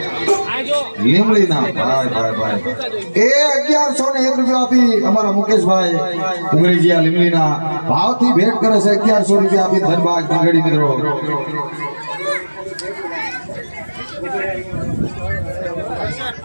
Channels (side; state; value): both; inverted; correlation -1.00